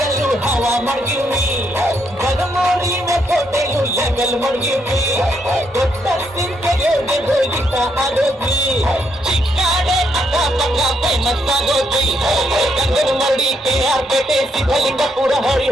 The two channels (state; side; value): normal; both; correlation 0.76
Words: ಹವಾ ಮಡಗಿವ್ನಿ ಬದಮೋಡಿ ಕೋಟೆಯು ಲೆವೆಲ್ ಮಡಗಿವ್ನಿ ದೊಡ್ಡ ಸಿಂಕೆಗೆ ಹೋಗಿತ್ತ ಆಗೋದ್ವಿ ಚಿಕ್ಕಾಡೆ ಅಕ್ಕಪಕ್ಕ ಫೇಮಸ್ ಆಗೋದ್ವಿ ಗಂಗನ ಮರಡಿ KR ಪೇಟೆ ಸಿದ್ಧಲಿಂಗಪುರ